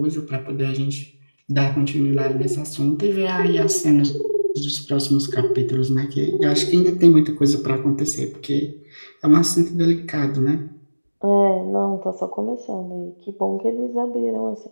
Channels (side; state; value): both; inverted; correlation -1.00